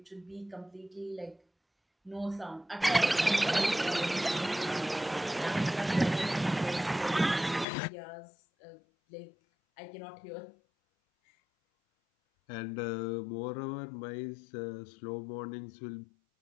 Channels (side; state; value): right; drops out; at 7.7 s